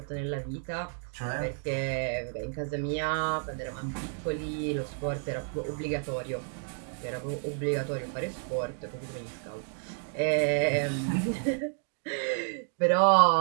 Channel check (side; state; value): left; silent; 57 dB below the other